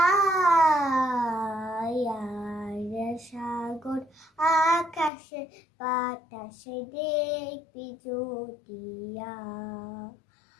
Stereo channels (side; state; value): right; drops out; at 5.1 s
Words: সাগর আকাশে বাতাসে দেখবি জ্যোতিয়া।